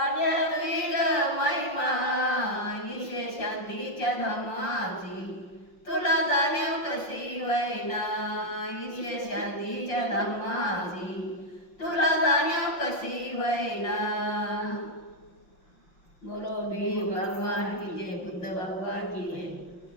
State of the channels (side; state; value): right; late; 5.6 ms